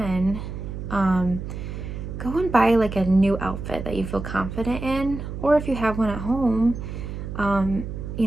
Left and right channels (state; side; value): noise; right; hum, 7 dB below the sound